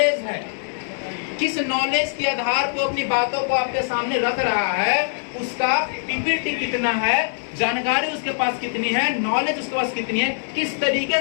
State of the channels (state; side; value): silent; right; digital silence